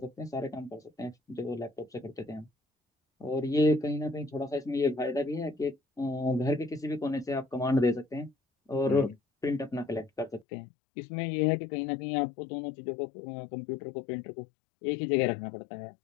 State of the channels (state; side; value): drops out; right; at 10.5 s